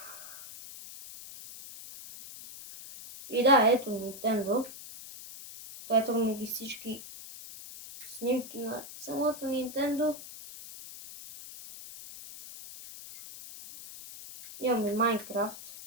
И да, ето Nintendo. Ето ми ги всички снимки на самото Nintendo. Имам и Minecraft.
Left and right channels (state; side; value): noise; left; hiss, 14 dB below the sound